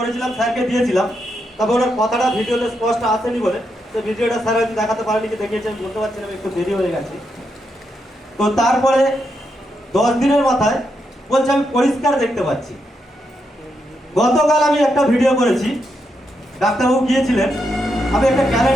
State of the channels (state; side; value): normal; both; correlation 0.82